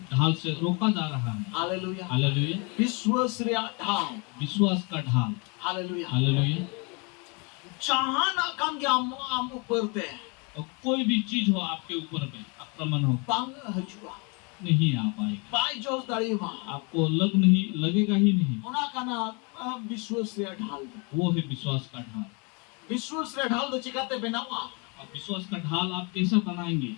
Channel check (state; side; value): quieter; right; 31.9 dB